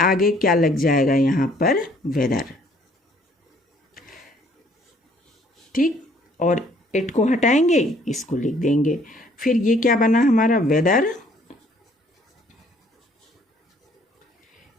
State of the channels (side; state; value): both; normal; correlation 0.61